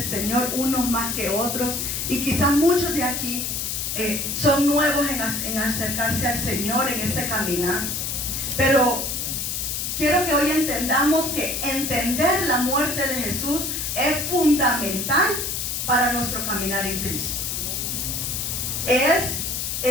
Señor, unos más que otros, y quizás muchos de aquí son nuevos en acercarse al Señor, en ese caminar. Pero quiero que hoy entendamos que entender la muerte de Jesús es fundamental para nuestro caminar en Cristo.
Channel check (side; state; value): left; noise; hiss, 2 dB below the sound